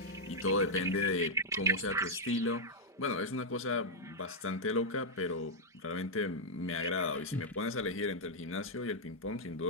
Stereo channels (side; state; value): both; normal; correlation -0.04